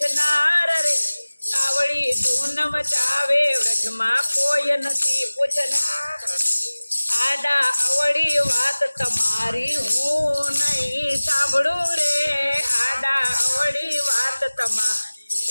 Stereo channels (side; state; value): both; inverted; correlation -1.00